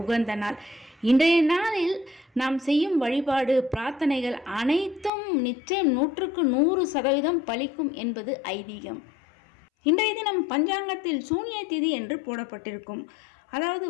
உகந்த நாள். இன்றைய நாளில் நாம் செய்யும் வழிபாடு பிரார்த்தனைகள் அனைத்தும் நிச்சயம் 100% பலிக்கும் என்பது ஐதீகம். இன்றைய தினம் பஞ்சாங்கத்தில் சூன்ய திதி என்று போடப்பட்டிருக்கும். அதாவது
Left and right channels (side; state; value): right; drops out; at 5.1 s